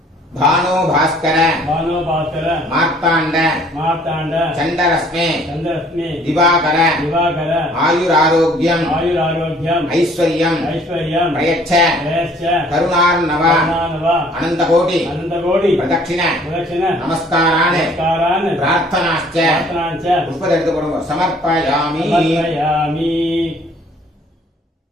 भानो भास्कर भानो भास्कर मार्ताण्ड मार्ताण्ड चण्डरश्मे चन्द्ररश्मि दिवाकर दिवाकर आयुरारोग्यम् आयुरारोग्यम् ऐश्वर्यम् ऐश्वर्यम् प्रयच्छ प्रयश्च करुणार्णव करुणानव अनन्तकोटि अनन्तकोटि प्रदक्षिण प्रदक्षिण नमस्कारान् नमस्कारान् प्रार्थनाश्च प्रार्थनाञ्च पुष्पத்தை எடுத்து போடுங்க समर्पयामि समर्पयामि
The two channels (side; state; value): both; normal; correlation 0.57